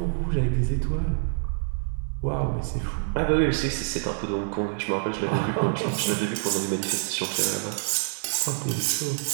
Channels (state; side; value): silent; left; 57 dB below the other